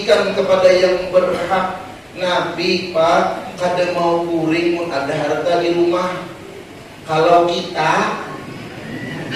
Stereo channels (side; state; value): both; identical; correlation 1.00